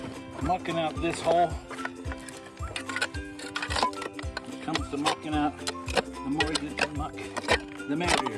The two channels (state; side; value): identical; both; correlation 1.00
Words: Mucking out this hole. When it comes to mucking out, the more you get to muck, the